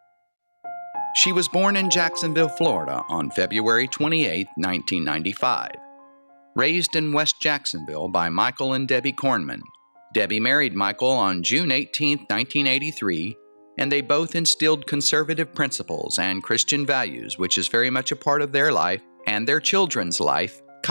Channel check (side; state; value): both; inverted; correlation -1.00